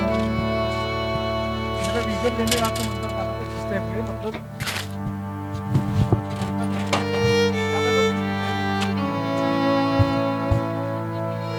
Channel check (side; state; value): both; identical; correlation 1.00